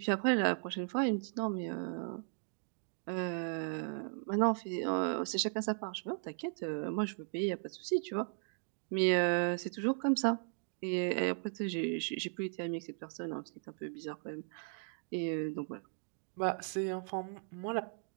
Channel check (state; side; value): silent; left; 53 dB below the other